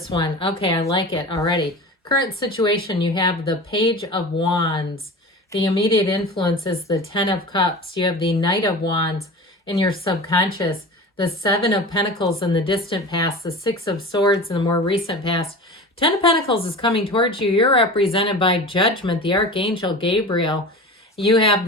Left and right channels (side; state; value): both; normal; correlation 0.33